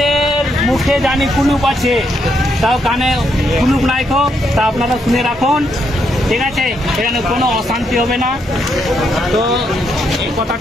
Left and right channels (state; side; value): normal; both; correlation 0.77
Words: মুখে জানি কুলুপ আছে, তাও কানে কুলুপ নাই তা আপনারা শুনে রাখুন, ঠিক আছে? এখানে কোনো অশান্তি হবে না, তো এই